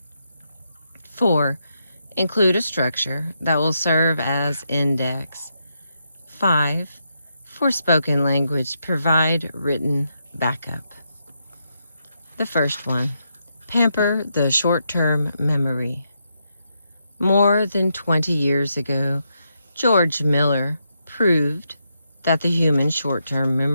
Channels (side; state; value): both; inverted; correlation -0.81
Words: 4. Include a structure that will serve as index. 5. For spoken language, provide written backup. The first one, pamper the short-term memory. More than 20 years ago, George Miller proved that the human short-term